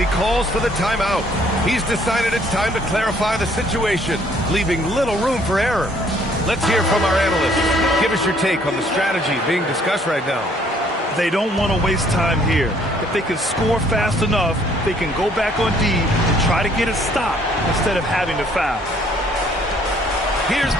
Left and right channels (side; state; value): both; normal; correlation 0.62